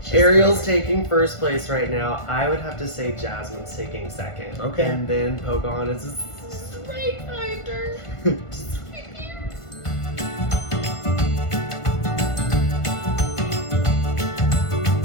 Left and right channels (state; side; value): late; right; 1.5 ms